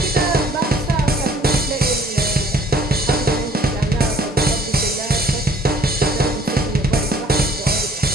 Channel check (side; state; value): both; normal; correlation 0.56